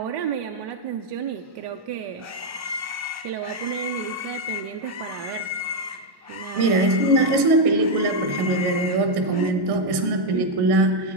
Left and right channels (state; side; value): late; left; 1.1 ms